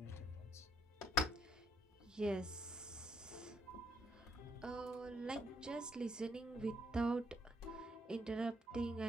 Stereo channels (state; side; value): normal; both; correlation 0.73